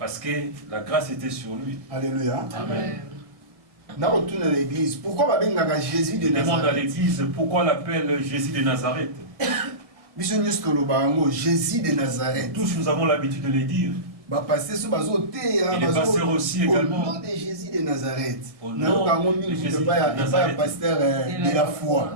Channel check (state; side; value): late; left; 1.7 ms